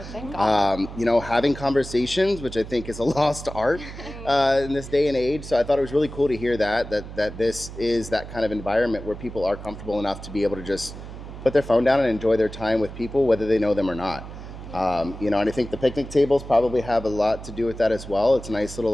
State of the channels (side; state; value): right; noise; hum, 12 dB below the sound